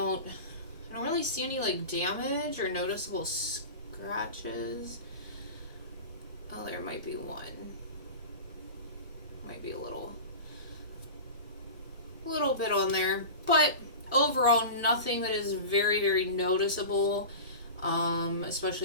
really see any like damage or noticeable scratches. Oh, there might be one. Might be a little bit on there, but overall nothing that is very, very noticeable,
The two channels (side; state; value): both; inverted; correlation -0.31